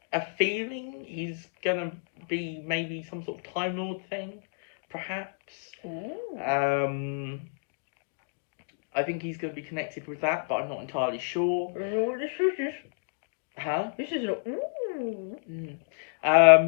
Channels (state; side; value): silent; right; digital silence